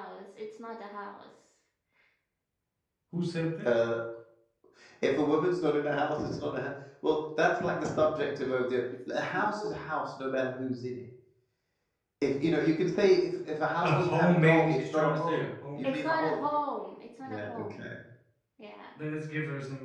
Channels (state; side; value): identical; both; correlation 1.00